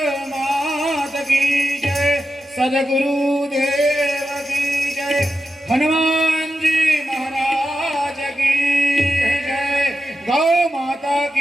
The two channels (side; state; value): both; normal; correlation 0.90